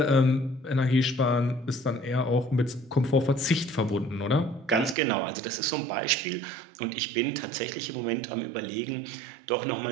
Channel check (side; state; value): left; drops out; at 5.0 s